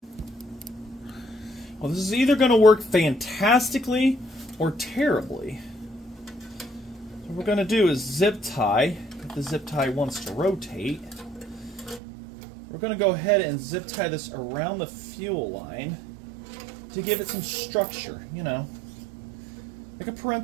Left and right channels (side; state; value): left; drops out; at 12.0 s